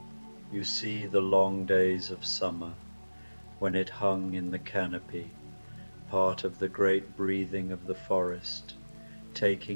You see the long days of summer, when it hung in the canopy, part of the great breathing of the forest,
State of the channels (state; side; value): inverted; both; correlation -1.00